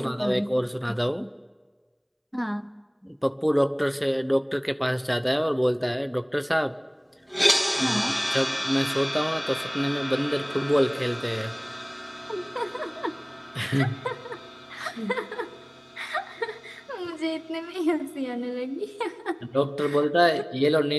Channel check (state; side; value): identical; both; correlation 1.00